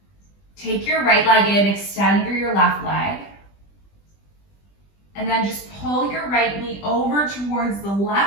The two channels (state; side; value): late; right; 20 ms